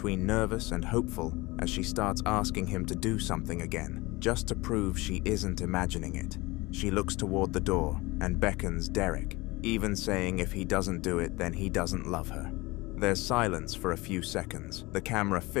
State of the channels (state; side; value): quieter; right; 22.3 dB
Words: nervous and hopeful as she starts asking him to do something again, just to prove she isn't imagining it. She looks toward the door and beckons Derek, even saying if he doesn't do it, then he doesn't love her. There's silence for a few seconds, the camera